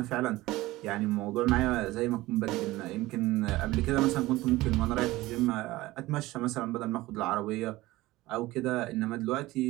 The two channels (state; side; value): quieter; left; 18.5 dB